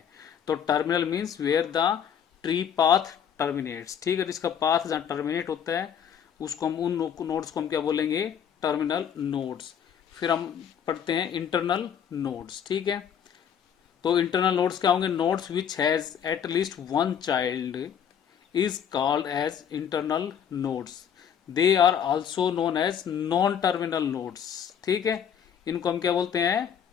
तो terminal means where the tree path terminates, ठीक है, इसका पाथ जहां टर्मिनेट होता है उसको हम, उन नोड्स को हम क्या बोलेंगे, टर्मिनल नोड्स। फिर हम पढ़ते हैं इंटरनल नोड्स, ठीक है। तो इंटरनल नोड्स क्या होंगे, nodes which has at least one child is called as internal nodes. They are also known as non terminal nodes, ठीक है। इनको हम क्या बोलते हैं,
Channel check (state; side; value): quieter; right; 8.3 dB